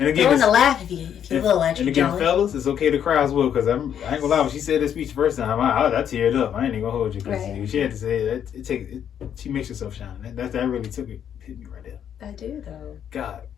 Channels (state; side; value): quieter; right; 9.1 dB